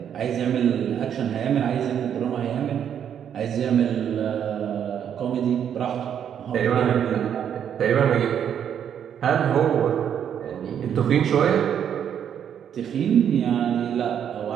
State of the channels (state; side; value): quieter; left; 8.9 dB